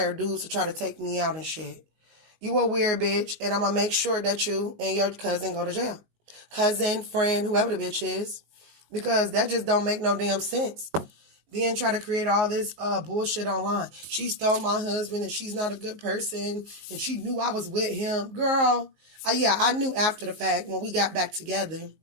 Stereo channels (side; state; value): left; late; 19 ms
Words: dudes to try to take me out and shit. You a weird bitch, and I'm going to make sure that you and your cousin go to jail. Cousin, friend, whoever the bitch is. Because that just don't make no damn sense. Then try to create all this bullshit online. She stole my husband, and she's not a good person, and she knew I was with him. Girl, yeah, I knew after the fact when we got back together.